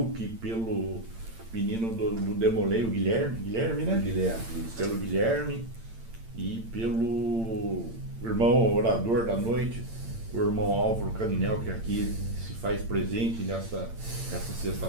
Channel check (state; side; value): late; left; 8.8 ms